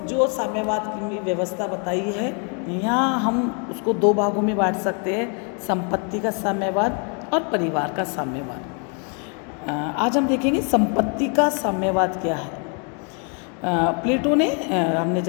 साम्यवाद की व्यवस्था बताई है, यहाँ हम उसको दो भागों में बांट सकते हैं, संपत्ति का साम्यवाद और परिवार का साम्यवाद। आज हम देखेंगे संपत्ति का साम्यवाद क्या है। प्लेटो ने हमने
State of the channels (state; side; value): quieter; right; 38.8 dB